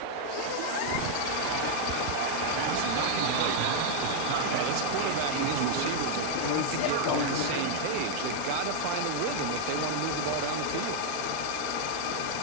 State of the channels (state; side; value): different; both; correlation 0.00